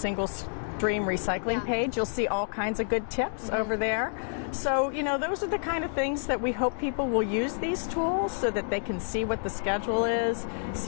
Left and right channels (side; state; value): right; silent; digital silence